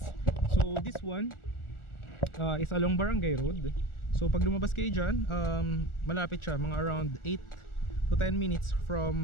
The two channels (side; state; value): right; late; 1.4 ms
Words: So this one is along Barangay Road. So pag lumabas kayo dyan, malapit siya, mga around 8 to 10 minutes